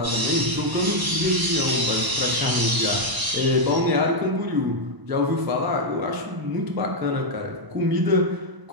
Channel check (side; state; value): left; late; 1.0 ms